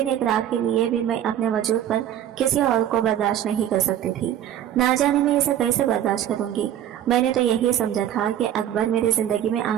एक रात के लिए भी मैं अपने वजूद पर किसी और को बर्दाश्त नहीं कर सकती थी। ना जाने मैं इसे कैसे बर्दाश्त करूंगी। मैंने तो यही समझा था कि अकबर मेरी जिंदगी में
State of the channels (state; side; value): quieter; left; 10.9 dB